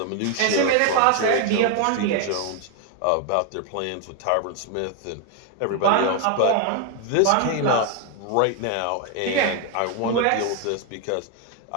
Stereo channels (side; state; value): both; different; correlation 0.00